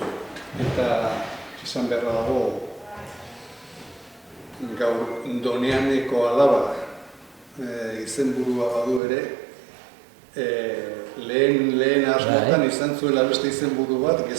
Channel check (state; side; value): drops out; left; at 9.0 s